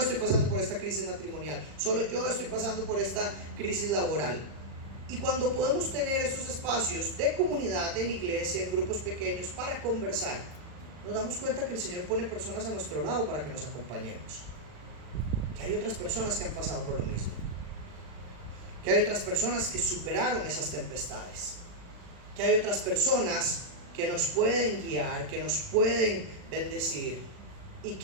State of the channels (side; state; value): left; late; 40 ms